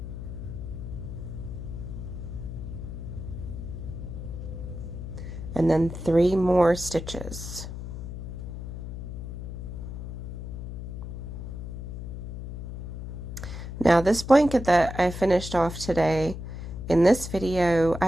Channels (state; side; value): noise; left; hum, 8 dB below the sound